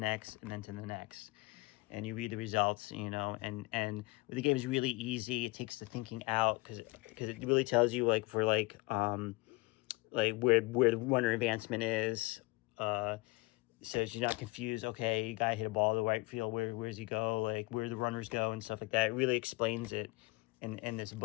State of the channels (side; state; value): right; quieter; 24.3 dB